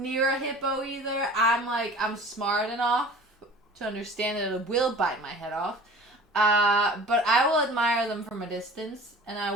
a hippo either. I'm smart enough to understand that it will bite my head off. But I will admire them from a distance, and I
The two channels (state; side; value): normal; both; correlation 0.42